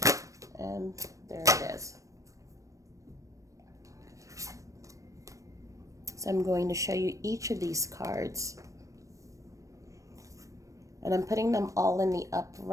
And there it is. So I'm going to show you each of these cards. And I'm putting them all in the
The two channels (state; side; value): late; left; 0.16 ms